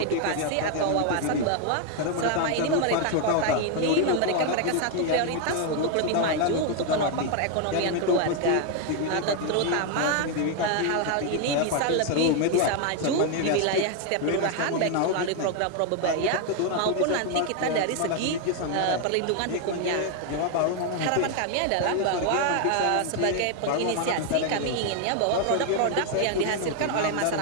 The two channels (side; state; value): both; different; correlation 0.01